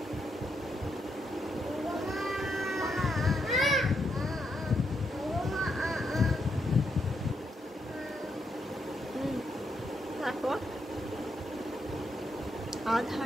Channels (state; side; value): normal; both; correlation 0.79